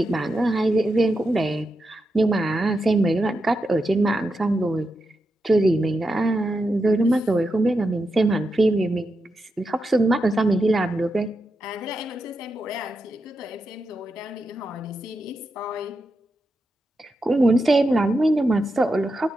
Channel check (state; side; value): normal; both; correlation 0.87